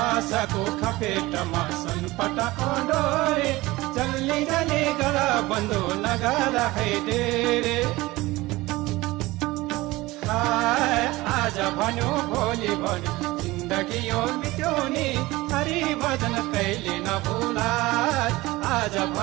खपेटमा सनपटाको डोरी चल्ने जाने गला बन्दो लगाला है डेरे आज भन्यो भोलि भन्यो जिन्दगी यो मिट्योनी हरि भजन कहिले नभुला आज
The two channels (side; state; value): left; quieter; 19.8 dB